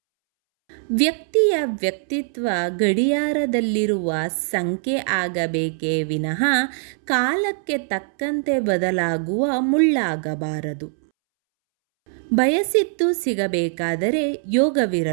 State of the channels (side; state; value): left; silent; 64 dB below the other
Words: ವ್ಯಕ್ತಿಯ ವ್ಯಕ್ತಿತ್ವ ಗಡಿಯಾರದಲ್ಲಿರುವ ಸಂಖ್ಯೆ ಆಗಬೇಕೇ ವಿನಃ ಕಾಲಕ್ಕೆ ತಕ್ಕಂತೆ ಬದಲಾಗುವ ಮುಳ್ಳಾಗಬಾರದು. ಬಯಸಿದ್ದು ಸಿಗಬೇಕಾದರೆ